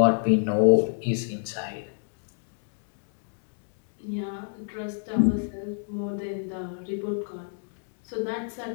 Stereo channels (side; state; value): right; silent; digital silence